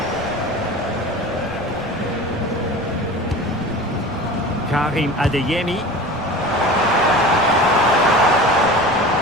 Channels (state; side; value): noise; left; rumble, 17 dB below the sound